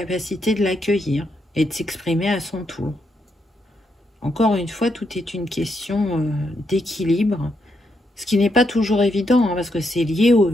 de l'accueillir et de s'exprimer à son tour. Encore une fois, tout est une question d'équilibre, ce qui n'est pas toujours évident, hein, parce que c'est lié au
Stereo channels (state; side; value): normal; both; correlation 0.80